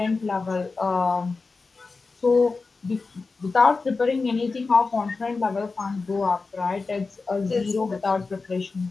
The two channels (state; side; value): quieter; right; 4.1 dB